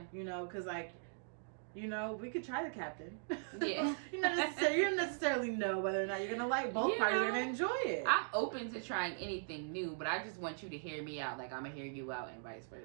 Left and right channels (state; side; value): silent; left; digital silence